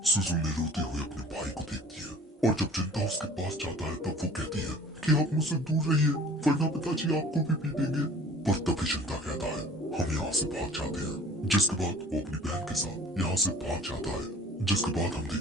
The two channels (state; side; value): normal; both; correlation 0.48